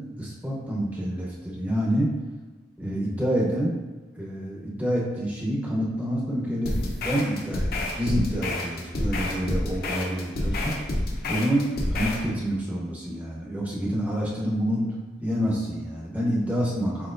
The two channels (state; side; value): normal; both; correlation 0.83